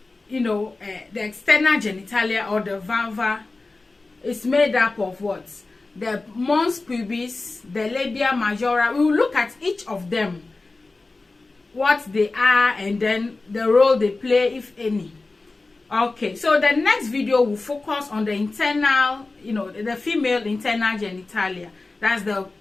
the external genitalia or the vulva is made up of what? The mons pubis, the labia majora. We will look at each of them, what they are, and then the role they play, if any. Okay, so the next video will focus on the internal, the female internal genitalia. That's the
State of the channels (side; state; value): right; quieter; 3.4 dB